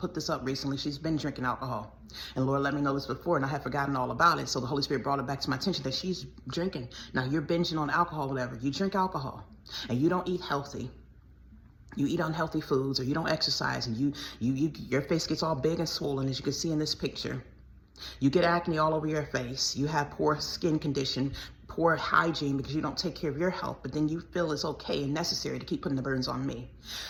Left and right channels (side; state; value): both; identical; correlation 1.00